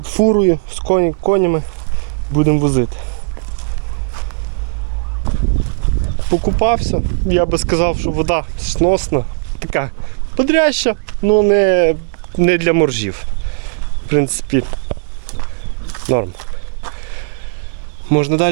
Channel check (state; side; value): silent; left; digital silence